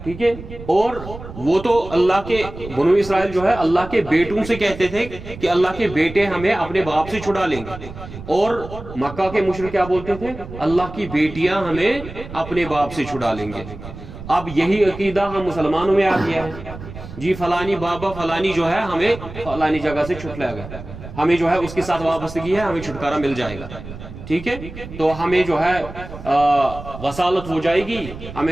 ٹھیک ہے, اور وہ تو اللہ کے بنو اسرائیل جو ہے اللہ کے بیٹوں سے کہتے تھے کہ اللہ کے بیٹے ہمیں اپنے باپ سے چھڑا لیں گے, اور مکہ کے مشرک کیا بولتے تھے؟ اللہ کی بیٹیاں ہمیں اپنے باپ سے چھڑا لیں گے. اب یہی عقیدہ ہم مسلمانوں میں آ گیا ہے جی, فلانی بابا فلانی جو ہے ہمیں فلانی جگہ سے چھٹلایا گیا, ہمیں جو ہے اس کے ساتھ وابستگی ہے, ہمیں چھٹکارا مل جائے گا, ٹھیک ہے, تو ہمیں جو ہے وصالت ہو جائے گی,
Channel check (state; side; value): noise; right; rumble, 13 dB below the sound